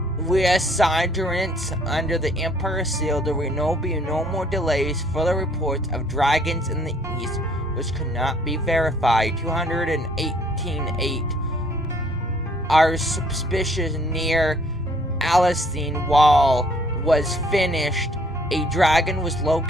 reassurance under the Emperor seal. There will be no more delays. Further reports of dragons in the east, which could not be verified. 218.8 are suspicious near Alcine wall was finished. A dragon was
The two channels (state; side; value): normal; both; correlation 0.61